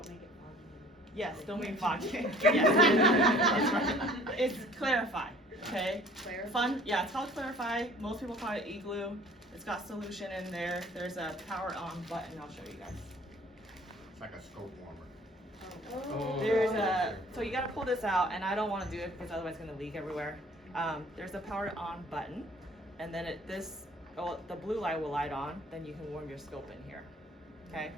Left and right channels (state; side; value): normal; both; correlation 0.52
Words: make it foggy. Yes, don't mean foggy. Yes. It's Clarify, okay? Clarify? Yeah, it's called Clarify. Most people call it igloo. It's got solution in there. There's a power on button. I'll show you guys. It's like a scope warmer. Oh. There's so you gotta pull this out, and I don't wanna do it because otherwise it's gonna leak everywhere. There's a power on button, and then the blue light will light on, then you can warm your scope in here, okay?